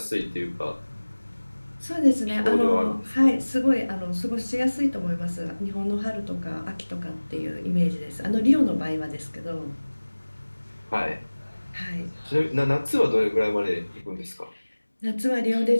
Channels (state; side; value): inverted; both; correlation -1.00